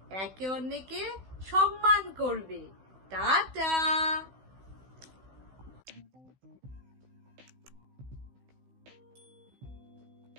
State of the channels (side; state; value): left; late; 16 ms